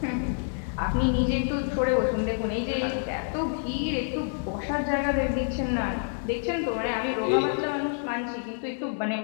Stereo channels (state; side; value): silent; right; digital silence